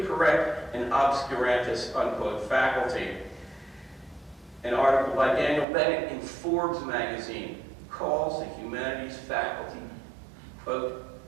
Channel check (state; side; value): drops out; left; at 5.7 s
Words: correct and obscurantist, unquote, faculty. An article by Daniel Bennett in Forbes magazine calls the humanities faculty,